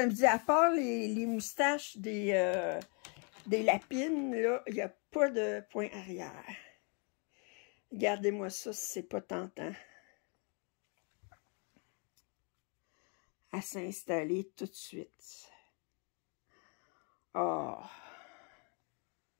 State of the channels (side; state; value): right; quieter; 37.3 dB